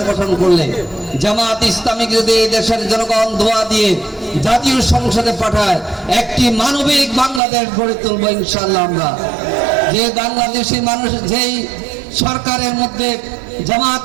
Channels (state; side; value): drops out; left; at 7.4 s